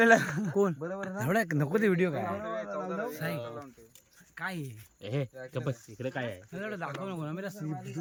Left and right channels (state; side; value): identical; both; correlation 1.00